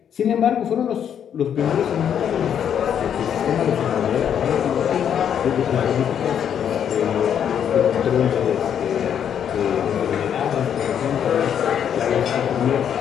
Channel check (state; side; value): quieter; right; 8.8 dB